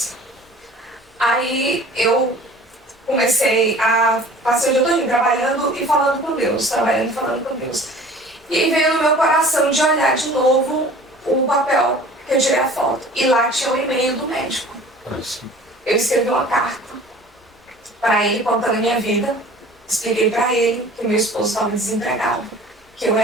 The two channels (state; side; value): normal; both; correlation 0.46